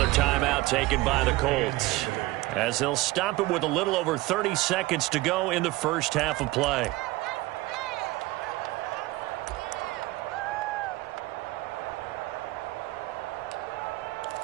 timeout taken by the Colts, as they'll stop it with a little over 30 seconds to go in the first half of play.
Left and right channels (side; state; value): left; quieter; 19.3 dB